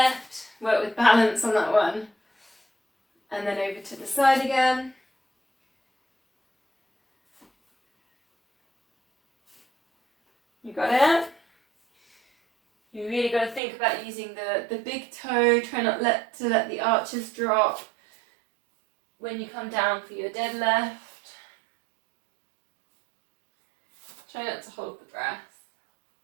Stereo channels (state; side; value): drops out; left; at 13.6 s